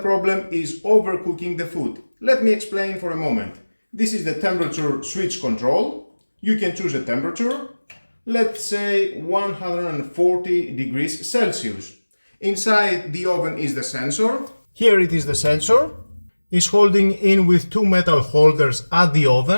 is overcooking the food. Let me explain for a moment. This is the temperature switch control. You can choose a temperature, let's say 140 degrees Celsius. Inside the oven is the sensor. Here it is the sensor. It's holding in with two metal holders at the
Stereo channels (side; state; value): both; inverted; correlation -1.00